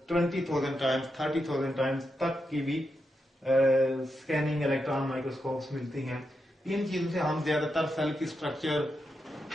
20,000 टाइम्स, 30,000 टाइम्स तक की भी स्कैनिंग इलेक्ट्रॉन माइक्रोस्कोप्स मिलती हैं। इन चीजों से हम ज्यादातर सेल की स्ट्रक्चर,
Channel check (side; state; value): both; normal; correlation 0.85